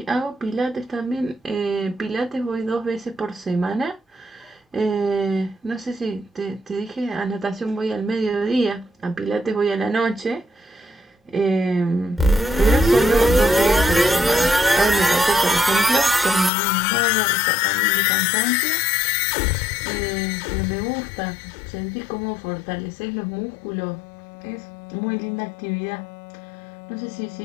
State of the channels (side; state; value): right; drops out; at 16.5 s